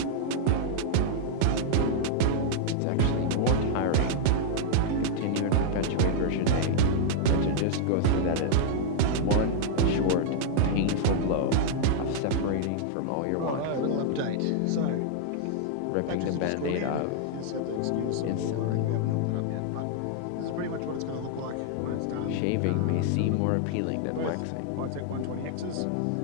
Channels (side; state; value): both; different; correlation -0.01